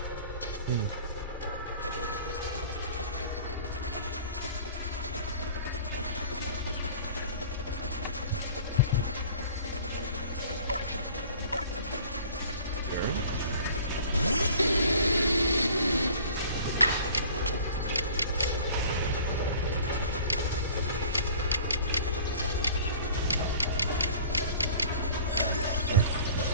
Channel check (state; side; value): inverted; both; correlation -0.47